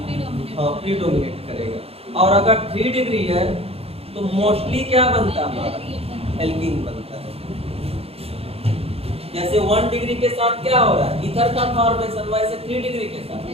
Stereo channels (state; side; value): late; left; 0.29 ms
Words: हाँ प्रीडोमिनेट करेगा। और अगर 3 डिग्री है तो मोस्टली क्या बनता है हमारा, एल्कीन बनता है। जैसे 1 डिग्री के साथ क्या हो रहा है ईथर का फॉर्मेशन, वैसे 3 डिग्री के साथ